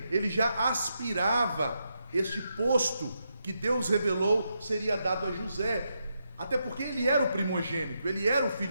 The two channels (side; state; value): both; inverted; correlation -0.83